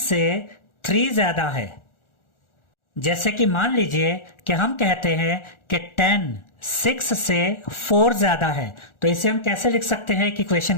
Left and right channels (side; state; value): right; late; 1.4 ms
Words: 3 ज्यादा है। जैसे कि मान लीजिए कि हम कहते हैं कि 10 6 से 4 ज्यादा है, तो इसे हम कैसे लिख सकते हैं एक